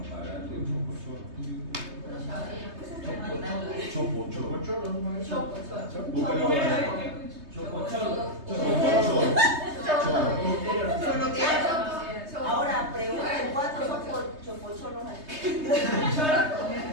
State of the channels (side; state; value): left; late; 3.2 ms